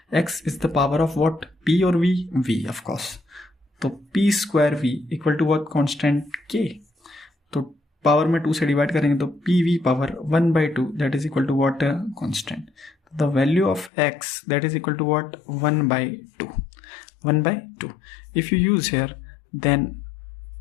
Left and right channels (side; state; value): right; drops out; at 13.9 s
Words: x is the power of what P और V, V ऑफ कोर्स। तो P square V equal to what constant K। तो पावर में 2 से डिवाइड करेंगे तो PV power 1/2 that is equal to what constant. The value of x that is equal to what 1/2 1/2। If you use here then